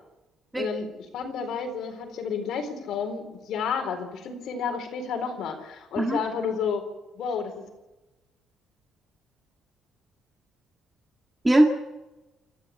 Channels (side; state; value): both; normal; correlation 0.79